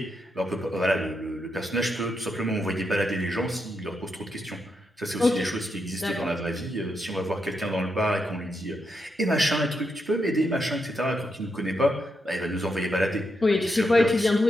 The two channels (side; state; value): both; normal; correlation 0.83